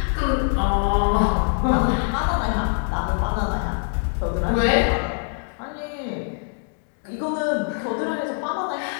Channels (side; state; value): right; silent; 63 dB below the other